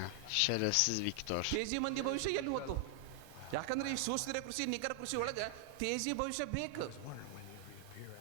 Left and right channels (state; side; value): different; both; correlation 0.00